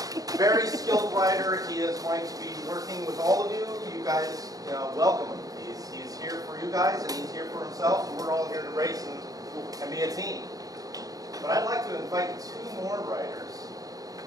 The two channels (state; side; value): late; left; 0.18 ms